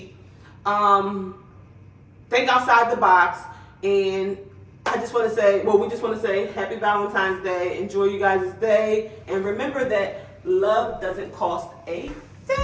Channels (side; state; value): both; identical; correlation 1.00